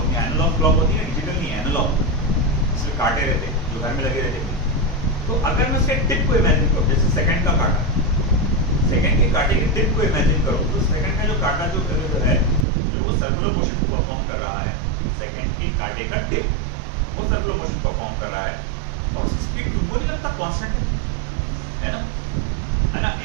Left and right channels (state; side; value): drops out; left; at 12.7 s